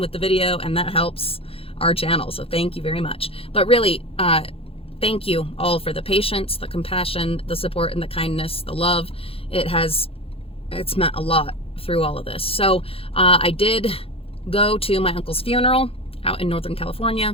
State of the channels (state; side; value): late; right; 0.27 ms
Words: the video and that helps our channel. So thank you very much. But really, thank you all for the patience, the compassion, the support, and the kindness, the love. It's meant a lot through all of this. So I did go to my uncle's funeral out in Northern